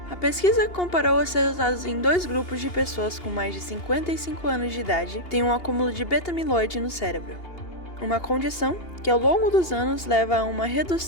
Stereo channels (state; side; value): late; right; 2.8 ms